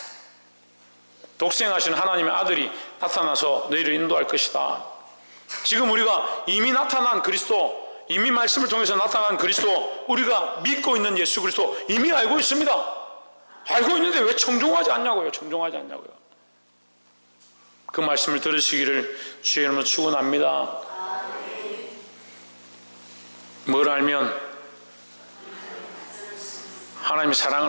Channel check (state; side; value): inverted; both; correlation -1.00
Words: 독생하신 하나님의 아들이 나타나서 너희를 인도할 것이다. 지금 우리가 이미 나타난 그리스도, 이미 말씀을 통해서 나타난 그리스도, 우리가 믿고 있는 예수 그리스도 이미 알고 있습니다. 알고 있는데 왜 청종하지 않냐고요. 청종하지 않냐고요. 그 말씀을 들으시기를 주의 이름으로 축원합니다. 뭘 알면? 하나님의